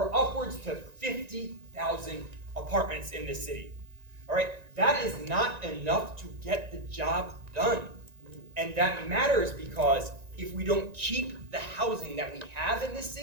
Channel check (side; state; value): left; late; 1.9 ms